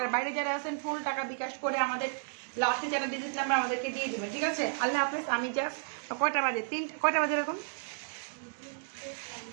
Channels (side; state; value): left; silent; digital silence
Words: বাইরে যারা আছেন ফুল টাকা বিকাশ করে আমাদের লাস্টে যারা ডিজিট নাম্বার আমাদেরকে দিয়ে দেবেন, ঠিক আছে? আল্লাহ হাফিজ। আমি জাস্ট কয়টা বাজে, কয়টা বাজে এরকম